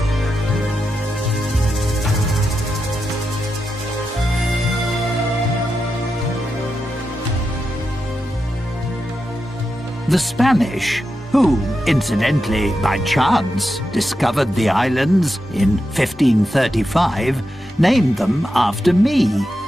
The Spanish, who, incidentally, by chance, discovered the islands in 1535, named them after me.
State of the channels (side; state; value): both; normal; correlation 0.88